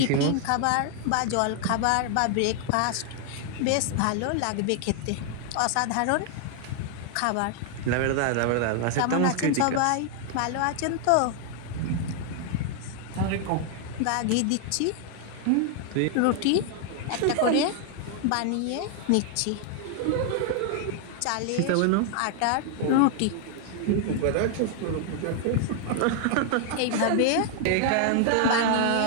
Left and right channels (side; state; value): both; different; correlation 0.00